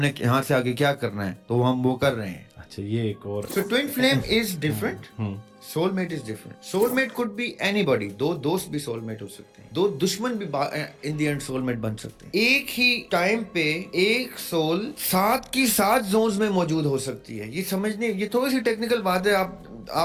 یہاں سے آگے کیا کرنا ہے, تو ہم وہ کر رہے ہیں. اچھا یہ ایک اور So twin flame is different. Soulmate is different. Soulmate could be anybody. دو دوست بھی soulmate ہو سکتے ہیں, دو دشمن بھی in the end soulmate بن سکتے ہیں. ایک ہی ٹائم پہ ایک سول 7 کی 7 زونز میں موجود ہو سکتی ہے. یہ سمجھنے, یہ تھوڑی سی ٹیکنیکل بات ہے,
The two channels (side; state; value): both; identical; correlation 1.00